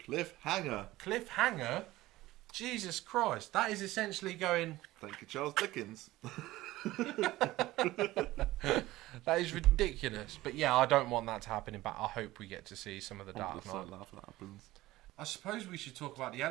Cliffhanger? Jesus Christ. That is essentially going... Thank you, Charles Dickens. That is ridiculous. But yeah, I don't want that to happen in I hope we get to see some of the Dark Knight. Laugh when that happens. I suppose we should talk about the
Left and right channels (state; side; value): quieter; left; 17.3 dB